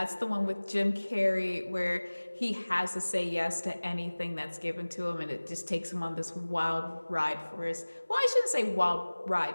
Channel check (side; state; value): both; inverted; correlation -1.00